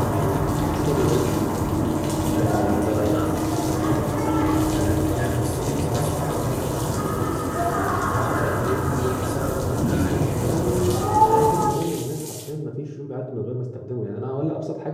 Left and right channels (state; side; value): identical; both; correlation 1.00